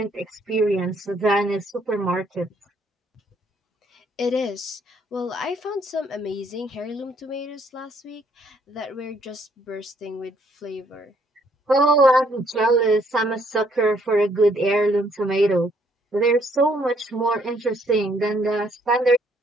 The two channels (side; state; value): both; normal; correlation 0.67